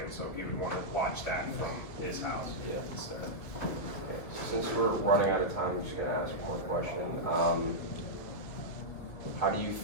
so he would want to watch that from his house instead. Okay, so since we're running out of time, I'm just gonna ask one more question. How do you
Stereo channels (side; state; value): right; late; 2.3 ms